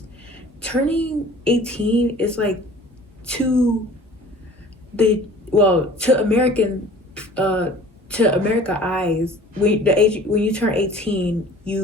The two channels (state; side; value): normal; both; correlation 0.47